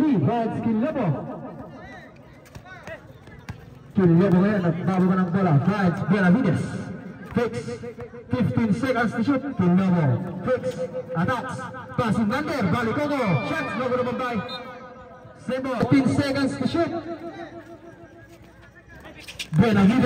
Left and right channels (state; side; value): identical; both; correlation 1.00